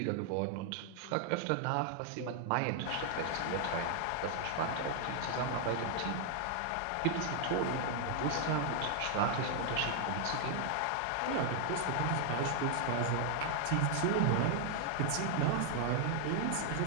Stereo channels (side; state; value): both; different; correlation 0.00